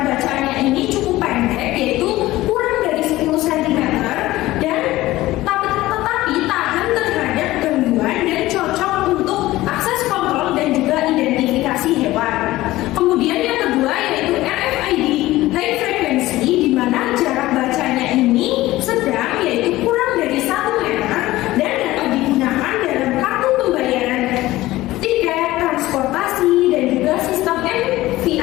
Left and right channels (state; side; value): quieter; right; 17.1 dB